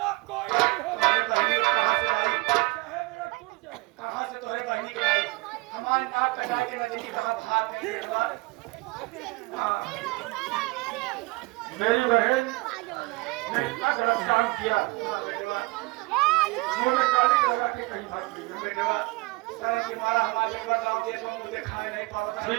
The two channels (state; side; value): quieter; left; 24.8 dB